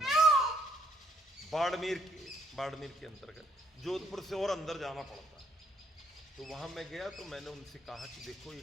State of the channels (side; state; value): both; normal; correlation 0.69